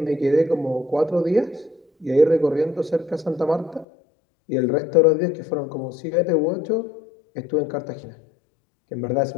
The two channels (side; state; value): right; drops out; at 3.9 s